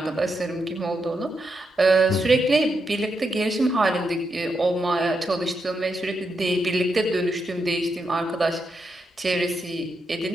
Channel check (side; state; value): both; normal; correlation 0.83